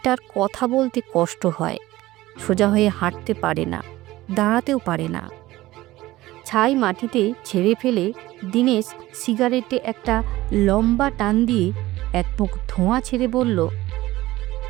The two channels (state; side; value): quieter; left; 17.3 dB